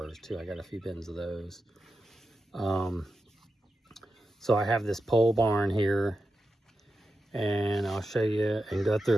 too. I got a few bins of those. So I have this pole barn here, and I'll show you and go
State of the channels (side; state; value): both; normal; correlation 0.89